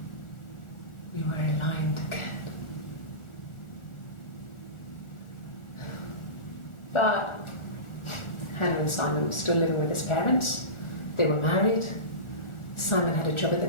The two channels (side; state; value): right; late; 1.4 ms